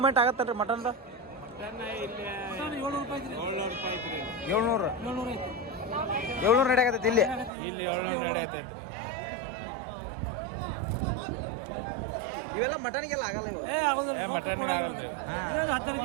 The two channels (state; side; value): drops out; left; at 7.5 s